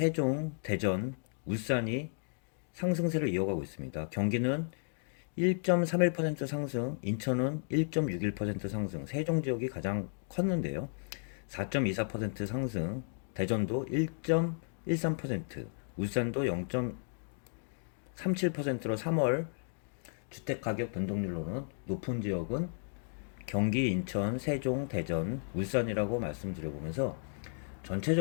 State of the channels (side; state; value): right; silent; 55 dB below the other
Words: 대전, 울산이 상승세를 이어가고 있습니다. 경기는 1.31% 상승, 인천은 1.61% 상승, 세종 지역이 가장 컸는데요. 4.24% 상승, 대전도 1.13%, 울산도 0.37%로 3월 주택가격 변동률로는 높은 지역은 경기, 인천, 세종, 대전, 울산이라고 말씀드려보면서